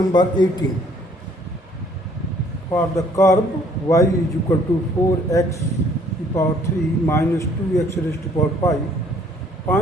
18. For the curve y is equal to 4x to the power 3 minus 2x raised to the power 5,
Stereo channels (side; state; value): both; normal; correlation 0.61